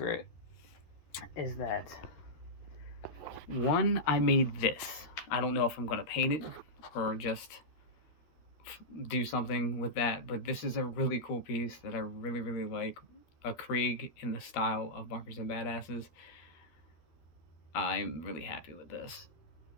is that, one, I made this. I don't know if I'm going to paint it or just do something with that, but this is a really cool piece that I really, really like. A Krieg in the style of Bunkers and Badasses. I'm really happy with this.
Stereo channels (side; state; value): right; late; 13 ms